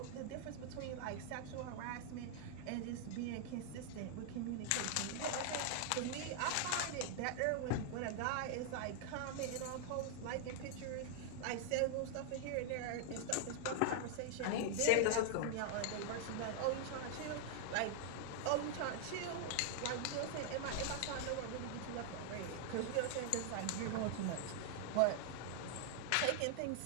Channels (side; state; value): both; different; correlation 0.00